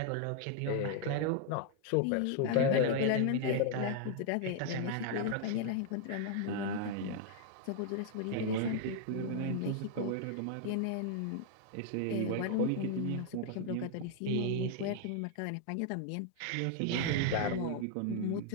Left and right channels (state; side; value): different; both; correlation 0.00